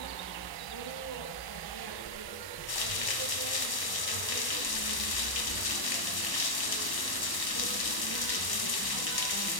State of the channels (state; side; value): late; right; 1.0 ms